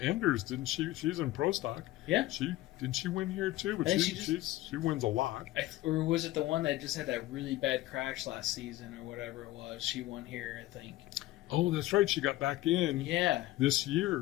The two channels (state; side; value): quieter; right; 16.6 dB